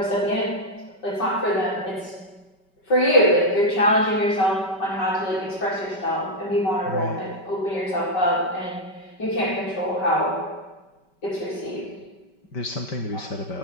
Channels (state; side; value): late; right; 5.2 ms